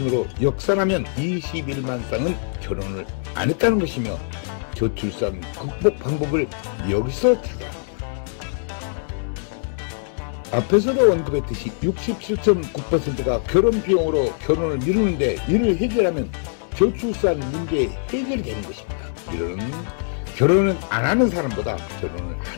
역산하면 21만 쌍은 결혼을 안 했다는 것이며 저출산 극복 방법을 여기서 찾아야 합니다. 앞에서도 언급했듯이 67.9%가 결혼 비용으로 결혼을 미루는데 이를 해결하면 저출산 문제 해결이 되는 것입니다. 이는 결혼은 안 하는 사람보다 결혼을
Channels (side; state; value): right; silent; 64 dB below the other